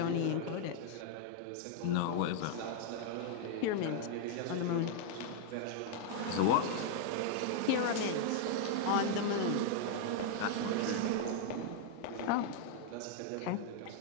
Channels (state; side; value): different; both; correlation 0.00